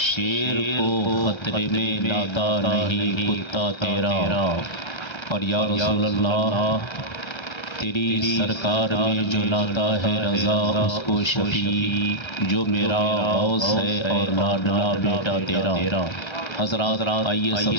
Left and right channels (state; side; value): late; right; 1.3 ms